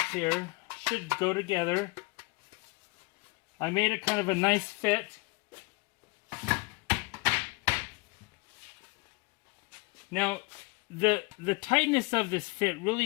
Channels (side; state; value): right; quieter; 26.1 dB